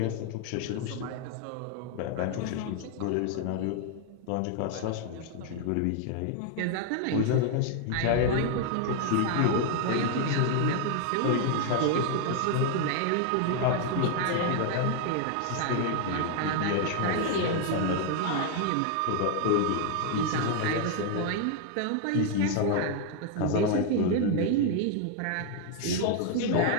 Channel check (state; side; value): different; both; correlation 0.00